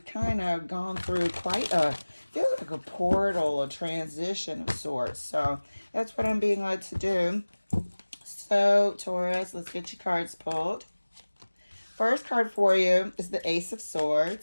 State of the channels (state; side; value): inverted; both; correlation -1.00